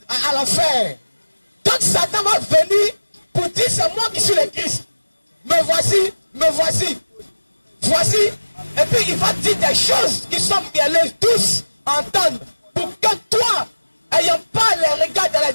à l'enfer. Donc Satan va venir pour dire, c'est moi qui suis le Christ. Me voici, me voici. Voici. Et puis il va dire des choses qui sont mielleuses, tous entendre. Pour que toi, ayant pas les regards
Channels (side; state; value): both; inverted; correlation -1.00